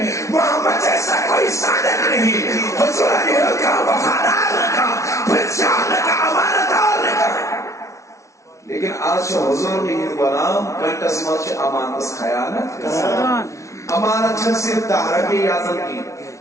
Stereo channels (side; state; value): right; late; 0.14 ms